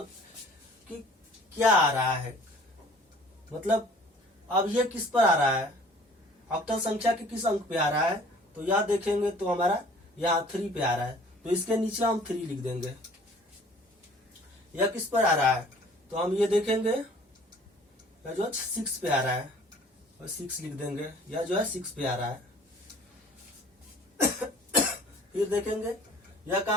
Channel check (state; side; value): normal; both; correlation 0.51